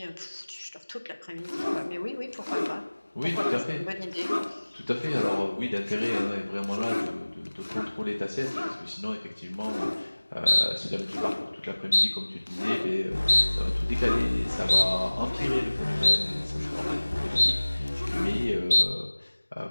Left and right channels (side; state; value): both; inverted; correlation -1.00